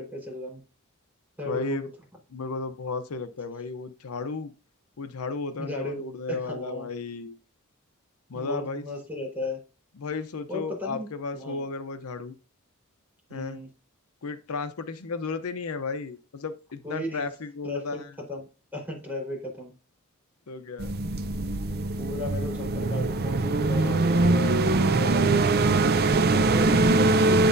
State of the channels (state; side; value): normal; both; correlation 0.39